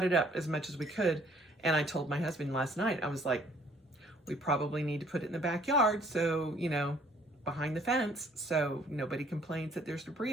it up as much as we could. And I told my husband last night, I was like, we probably need to put it in the backyard, so, you know, behind the fence, so nobody complains that there's debris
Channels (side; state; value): both; normal; correlation 0.60